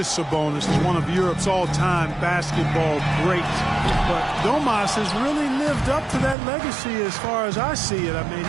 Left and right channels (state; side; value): drops out; left; at 6.4 s